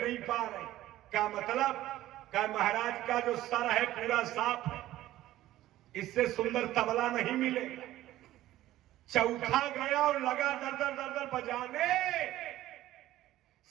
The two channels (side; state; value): left; quieter; 14.8 dB